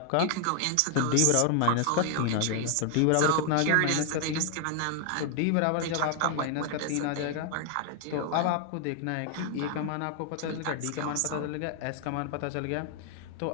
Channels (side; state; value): both; different; correlation 0.00